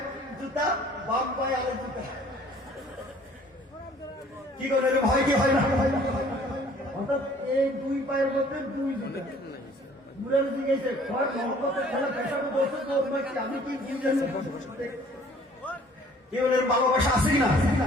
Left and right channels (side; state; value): both; normal; correlation 0.55